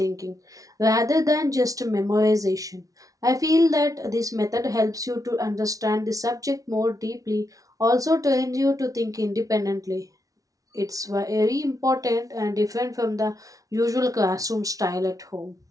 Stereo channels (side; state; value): left; late; 0.17 ms